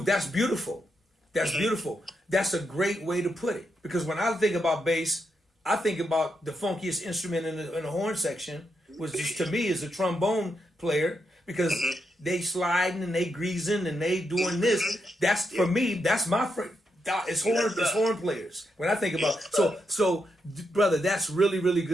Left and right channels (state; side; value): normal; both; correlation 0.82